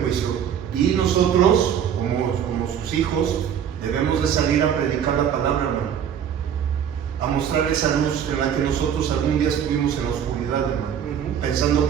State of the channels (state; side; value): quieter; left; 8.7 dB